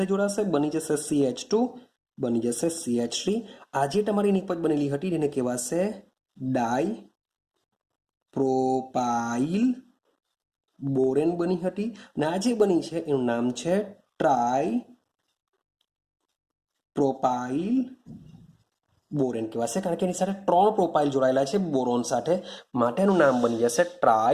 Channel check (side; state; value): both; identical; correlation 1.00